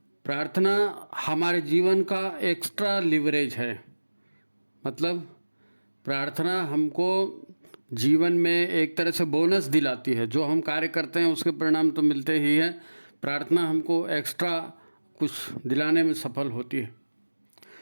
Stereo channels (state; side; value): inverted; both; correlation -1.00